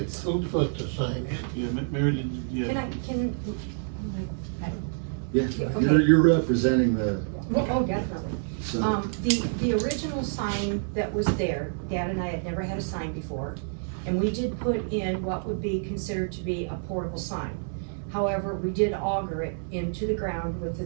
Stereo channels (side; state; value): left; silent; 59 dB below the other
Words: who put the sign? Yeah, Mary, did you, Can yeah, I, can, Yeah, Okay. you're representing the, oh, definitely. so, The original sign that was there, Dad and I had never had a sign before, and we did put in what would be considered to be a portable sign. However, we did auger it into the ground with the